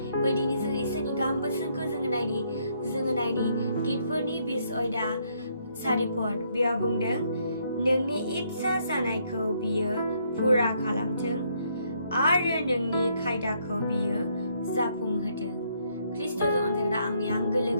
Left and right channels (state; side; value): inverted; both; correlation -0.71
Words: फै दिनै जों इसोरनि गाहाम बोसोनखौ जोङो नायनि गितफोरनि 20 अयदा 4 पद। बेयाव बुंदों नोंनि इच्ছা जानायखौ बियो फुरा खालामथों आरो नोंनि खायदाखौ बियो जाफुंहोथों। ख्रिस्ट'जों अनजाग्रा आंनि आंगो